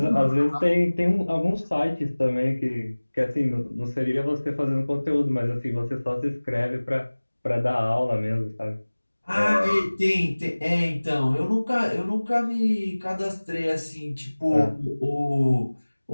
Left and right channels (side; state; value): both; inverted; correlation -1.00